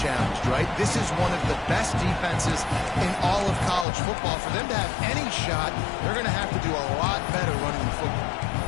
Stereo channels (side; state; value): right; drops out; at 3.9 s